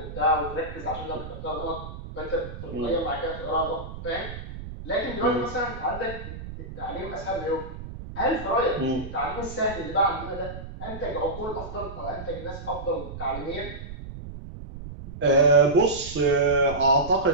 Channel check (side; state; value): right; noise; rumble, 11 dB below the sound